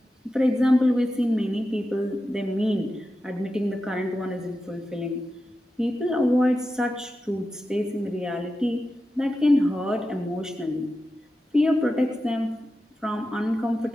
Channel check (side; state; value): both; normal; correlation 0.91